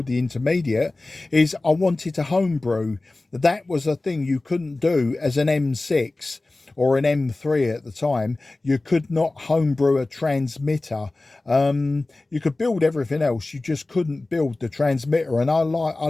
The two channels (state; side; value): quieter; right; 3.0 dB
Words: the intermediate, is I wanted to homebrew. That was a thing you couldn't do as an M6 or an M3 at the time. You could not homebrew a transmitter. You could build everything else, you just couldn't build the transmitter. And I